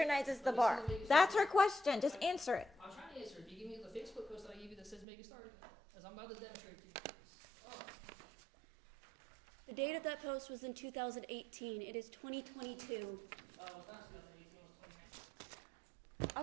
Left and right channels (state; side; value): drops out; left; at 5.1 s